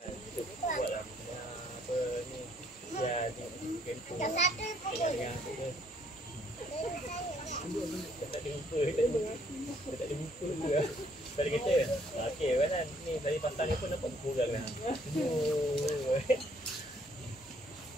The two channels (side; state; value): both; normal; correlation 0.65